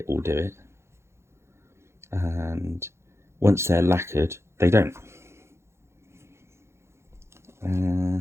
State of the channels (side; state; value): left; late; 0.13 ms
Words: will do it. And once they're lacquered, they don't.